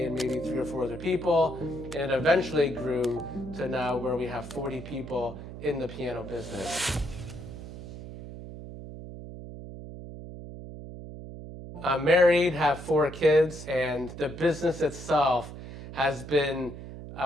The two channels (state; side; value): noise; right; hum, 12 dB below the sound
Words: maybe 3 or 4 other people, and it eventually grew to now where we have 40 people in the piano business. I'm married, have 4 kids, and the business itself has been,